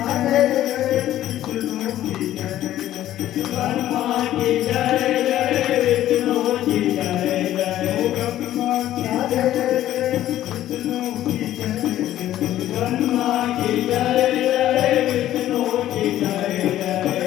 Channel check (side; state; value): right; quieter; 13.1 dB